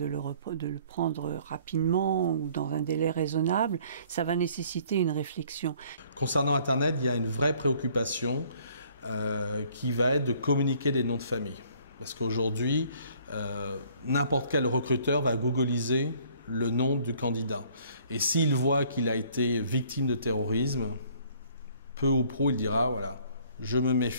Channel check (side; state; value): both; inverted; correlation -0.59